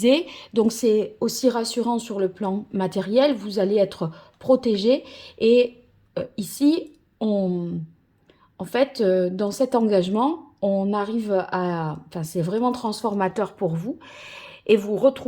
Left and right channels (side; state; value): both; identical; correlation 1.00